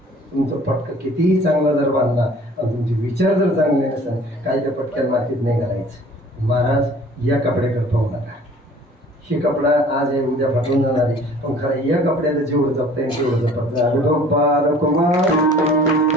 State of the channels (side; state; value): both; normal; correlation 0.51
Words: तुमचं पटका कितीही चांगला जर बांधला आणि तुमचे विचार जर चांगले नसेल काही त्या पटक्यात मातीत नाही घालायचं. महाराज या कपड्याकडे पाहू नका. हे कपडा आज आहे उद्या फाटून जाणार आहे पण खरं या कपड्याला जेवढं जपता येईल तेवढं जपत